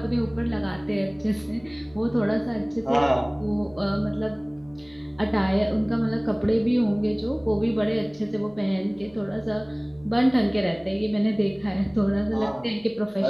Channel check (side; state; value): left; noise; hum, 27 dB below the sound